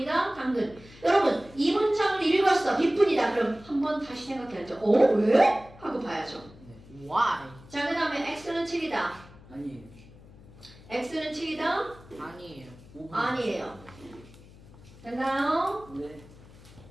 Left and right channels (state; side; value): noise; left; hum, 21 dB below the sound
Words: 당근. 여러분, 이 문장을 읽었어. B분이다. 그럼 한번 다시 생각해야죠. 왜? 하고 봐야죠. Why? 자, 그 다음에 X는 7이다. 아니에요. X는 7이다. 아니에요. 5분. 아니에요. 됐나요? 네.